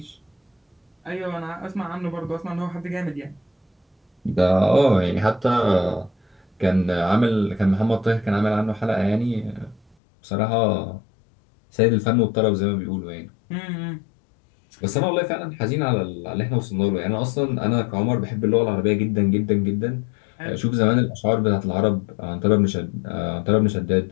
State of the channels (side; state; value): right; drops out; at 10.0 s